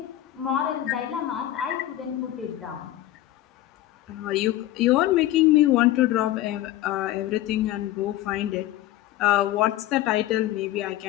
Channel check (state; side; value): quieter; right; 14.4 dB